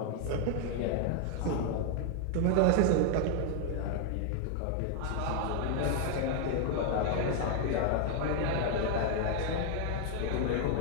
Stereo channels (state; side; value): different; both; correlation 0.00